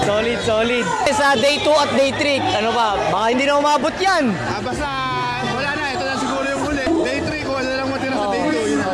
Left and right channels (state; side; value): identical; both; correlation 1.00